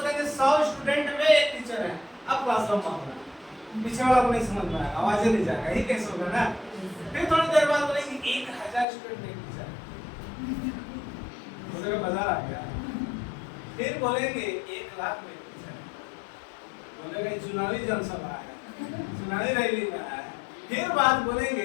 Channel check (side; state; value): right; drops out; at 8.8 s